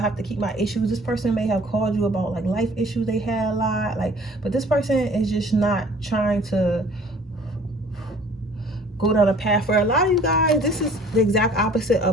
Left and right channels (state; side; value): normal; both; correlation 0.52